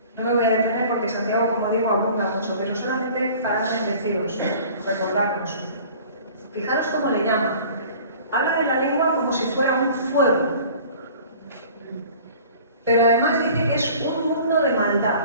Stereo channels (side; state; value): both; inverted; correlation -0.47